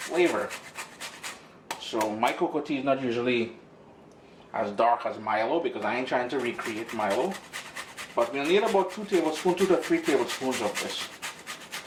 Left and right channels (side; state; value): both; identical; correlation 1.00